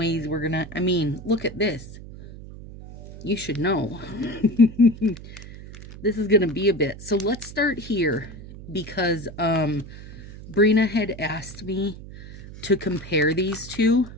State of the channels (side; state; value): right; noise; hum, 15 dB below the sound